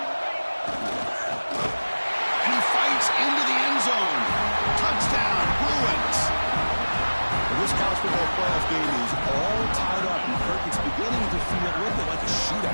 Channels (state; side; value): inverted; both; correlation -1.00